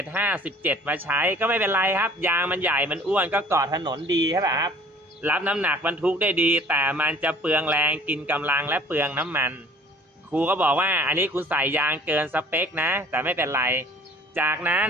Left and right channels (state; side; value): normal; both; correlation 0.51